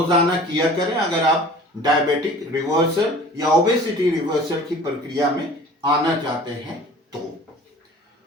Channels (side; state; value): both; normal; correlation 0.45